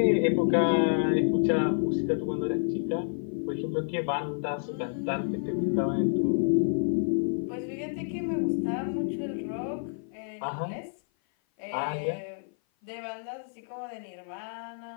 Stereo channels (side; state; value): right; silent; 55 dB below the other